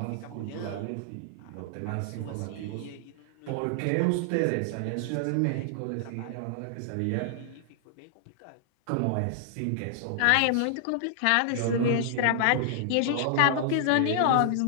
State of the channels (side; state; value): both; different; correlation -0.01